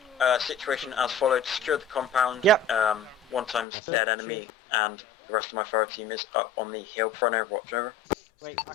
situation as followed. Secure the compound. Yep. 1 times dead enemy, and the rest of my fire team is up on the hill front over. Watch over. Wait, I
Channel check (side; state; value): right; drops out; at 3.7 s